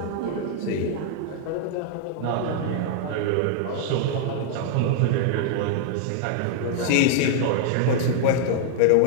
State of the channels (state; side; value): different; both; correlation 0.00